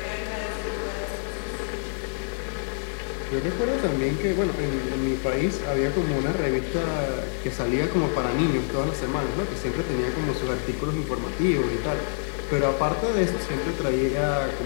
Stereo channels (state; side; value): silent; right; digital silence